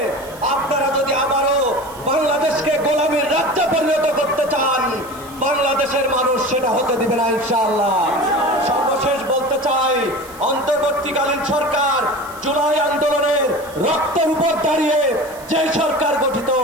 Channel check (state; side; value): noise; right; hiss, 20 dB below the sound